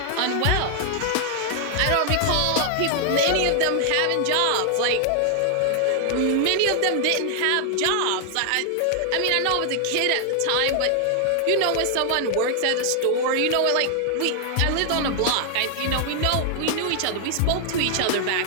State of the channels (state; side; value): different; both; correlation 0.00